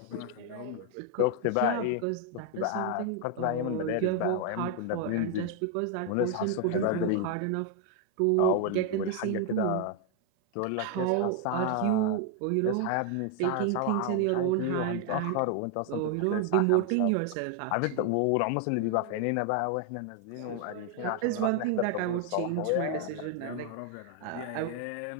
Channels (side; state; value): both; different; correlation 0.01